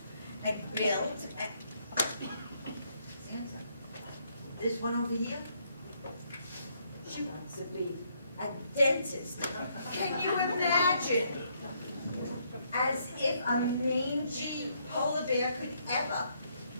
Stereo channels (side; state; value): both; inverted; correlation -0.72